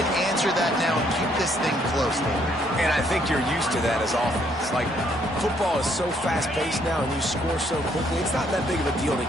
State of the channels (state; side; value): normal; both; correlation 0.68